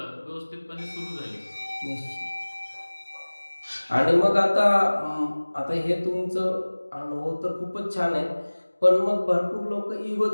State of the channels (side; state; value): both; inverted; correlation -1.00